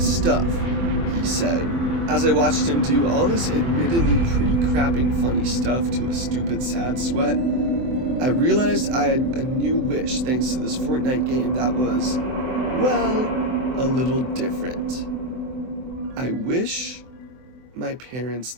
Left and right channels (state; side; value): late; left; 24 ms